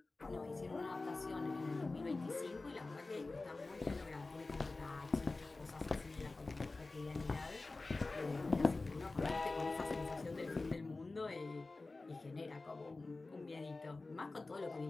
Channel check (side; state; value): right; quieter; 3.4 dB